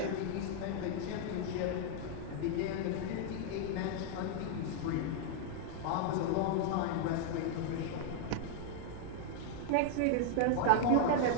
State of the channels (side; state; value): both; different; correlation -0.01